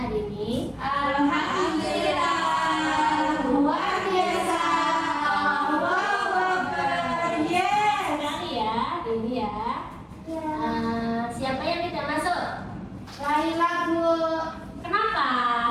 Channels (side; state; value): both; identical; correlation 1.00